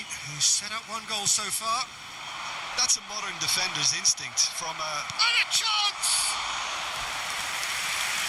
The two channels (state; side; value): identical; both; correlation 1.00